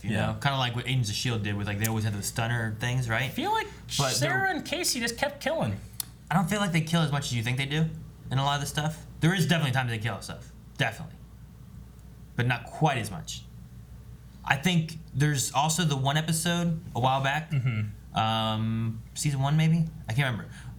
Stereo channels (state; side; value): identical; both; correlation 1.00